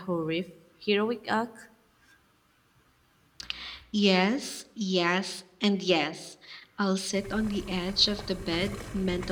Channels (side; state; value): both; identical; correlation 1.00